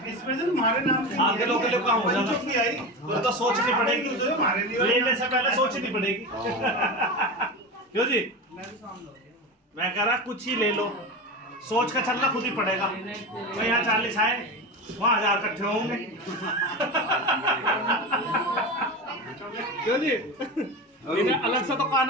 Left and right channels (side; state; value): both; normal; correlation 0.24